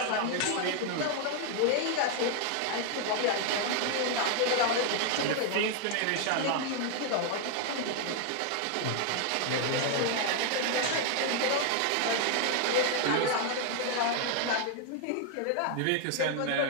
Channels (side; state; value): both; different; correlation 0.00